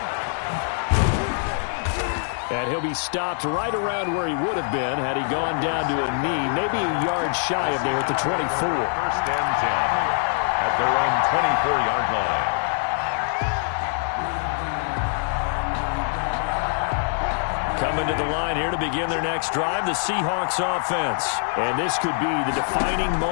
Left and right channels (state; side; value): silent; right; digital silence